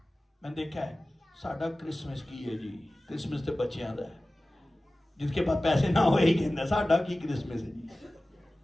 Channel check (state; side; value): normal; both; correlation 0.97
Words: میں نے دیکھا ہے, ساڈا کرسمس کی ہے جی, کرسمس تے بچیاں دا ہے. جس کے پاس پیسے نہ ہوئے ہی کہنا ساڈا کی کرسمس ہے جی.